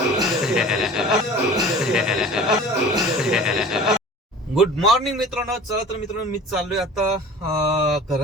गुड मॉर्निंग मित्रांनो. चला तर मित्रांनो, मी चाललोय आता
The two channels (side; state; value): both; normal; correlation 0.42